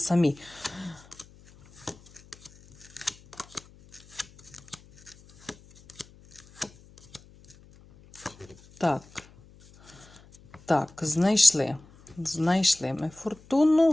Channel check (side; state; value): left; noise; hum, 25 dB below the sound